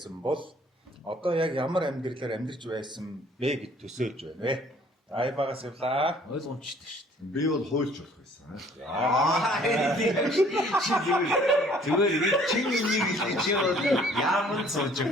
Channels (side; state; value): both; normal; correlation 0.57